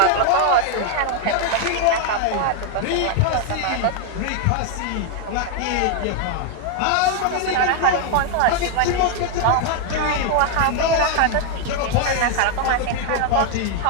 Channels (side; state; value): both; different; correlation 0.00